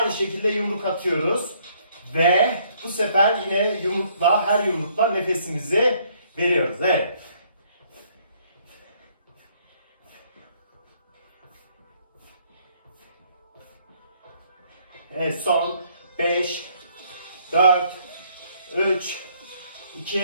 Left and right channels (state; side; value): inverted; both; correlation -0.66